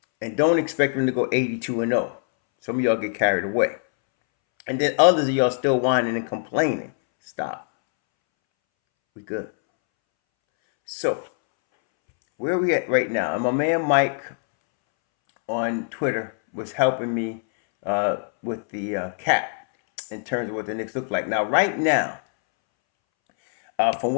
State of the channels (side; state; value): right; silent; 63 dB below the other